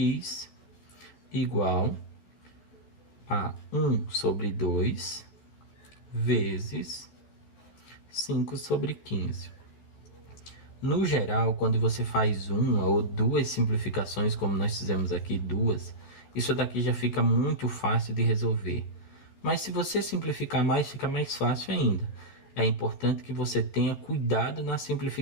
igual a 1 sobre 2 vezes 5 sobre 15. No geral, quando você faz uma ou duas simplificações, como nós fizemos aqui, duas, isso daqui já fica muito fácil de resolver. Mas se você simplificar mais, fica mais fácil ainda. É importante que você tenha cuidado na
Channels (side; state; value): right; late; 14 ms